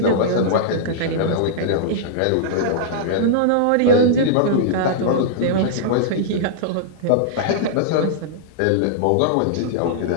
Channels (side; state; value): both; different; correlation -0.02